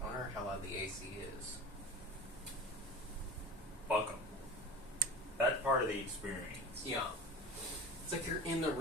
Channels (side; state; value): both; normal; correlation 0.35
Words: I wonder how loud the AC is. Fuck 'em. That's part of the experience. Yeah. It's like you're in the